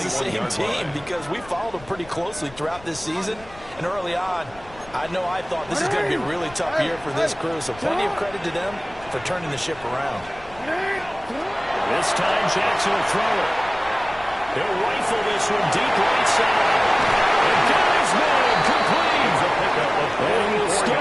the same team because we followed them pretty closely throughout this season. And early on, I thought this is going to be a really tough year for this crew. So plenty of credit to them for turning the ship around. This time Jackson will throw it. He'll rifle this one deep right side. And got his man complete. And he will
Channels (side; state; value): left; noise; rumble, 21 dB below the sound